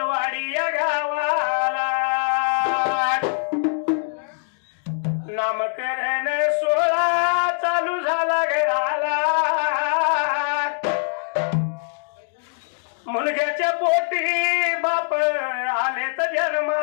या गावाला नामकरण सोहळा चालू झाला घराला मुलग्याच्या पोटी बाप आले तर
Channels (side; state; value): right; silent; digital silence